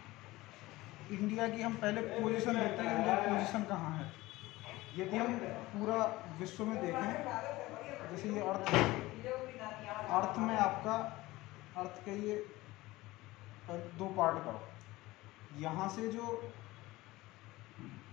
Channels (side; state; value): right; quieter; 19.1 dB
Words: इंडिया की हम पहले पोजीशन देखते हैं, इंडिया की पोजीशन कहाँ है। यदि हम पूरा विश्व में देखें, जैसे ये अर्थ है, अर्थ में आपका अर्थ के ये दो पार्ट करो। यहाँ से जो